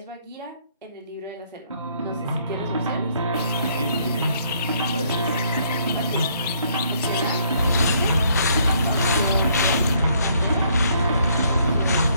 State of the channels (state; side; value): inverted; both; correlation -0.66